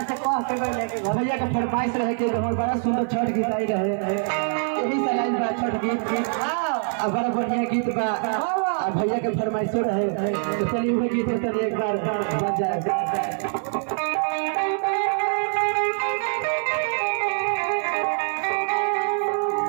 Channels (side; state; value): left; silent; 62 dB below the other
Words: के फरमाइश रहे कि हमारे बड़ा सुंदर छठ गीत आई रहे, यही लाइन बा छठ गीत बड़ा बढ़िया गीत बा भैया के फरमाइशो रहे। चलिए वही गीत चलिए एक बार बज जाए।